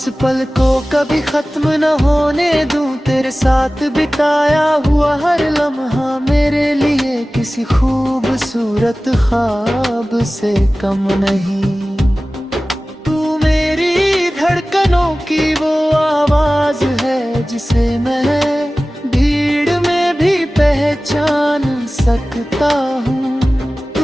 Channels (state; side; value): normal; both; correlation 0.97